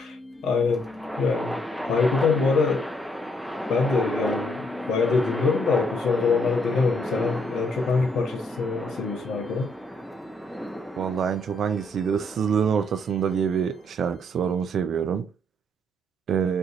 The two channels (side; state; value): both; normal; correlation 0.71